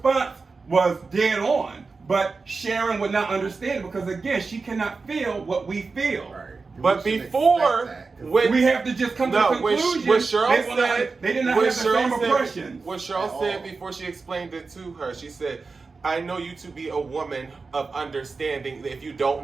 was dead on. But Sharon would not understand it because, again, she cannot feel what we feel. Right. But before, when we have to just come to a conclusion, what Sheryl said, they did not have the same impressions. What Sheryl said before she explained it to her, she said, I know you to be a woman of understanding. If you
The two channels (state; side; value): quieter; left; 4.3 dB